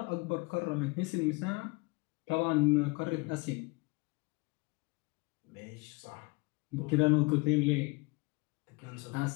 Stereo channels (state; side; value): quieter; right; 26.6 dB